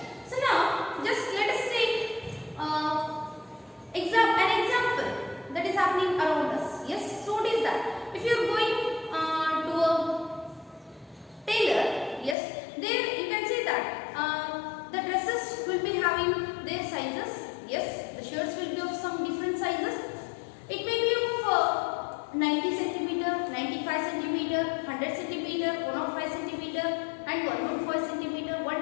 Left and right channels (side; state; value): right; drops out; at 12.4 s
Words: So now just let us take an example that is happening around us. Yes. So what is that? If you are going to a tailor, yes, there you can say that the dresses will be having their sizes. Yes, the shirts will be of some different sizes. It may be of 90 centimeter, 95 centimeter, 100 centimeter, 105 centimeter, and 105 centimeter,